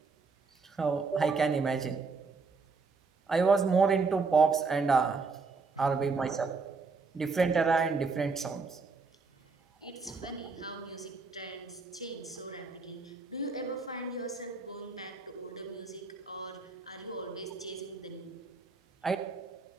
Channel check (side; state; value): left; quieter; 4.5 dB